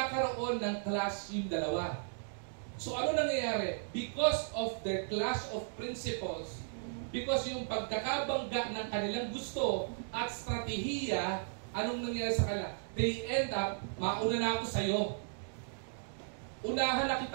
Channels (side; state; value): left; silent; digital silence